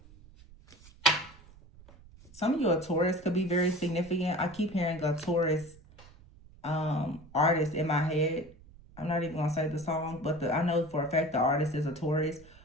Some of you, a Taurus could be very significant. I keep hearing a Taurus artist in my head. I'm not even going to say the song, but I know for a fact the artist is a Taurus.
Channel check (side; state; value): right; noise; rumble, 22 dB below the sound